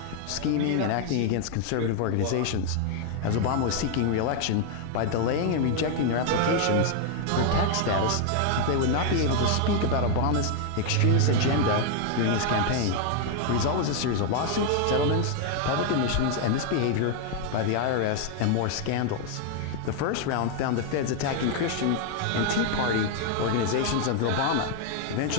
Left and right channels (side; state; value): both; different; correlation 0.00